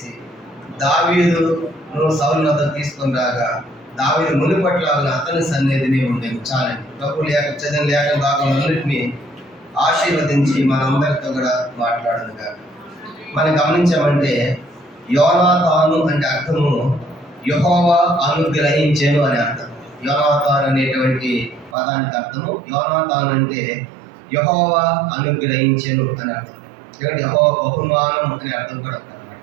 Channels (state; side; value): drops out; left; at 21.8 s